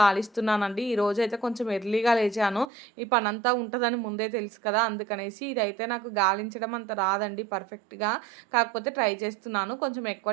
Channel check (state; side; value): drops out; left; at 2.7 s